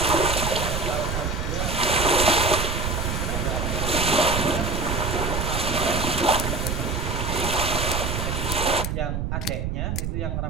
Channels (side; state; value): right; noise; rumble, 2 dB below the sound